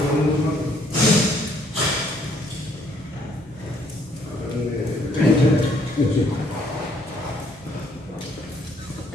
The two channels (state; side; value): normal; both; correlation 0.66